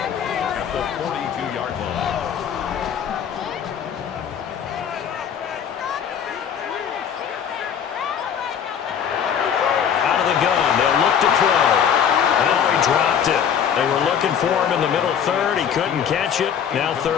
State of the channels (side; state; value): right; quieter; 8.2 dB